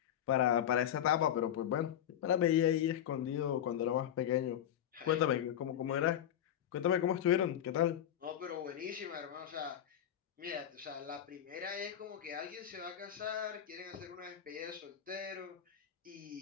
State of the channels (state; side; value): quieter; right; 10.3 dB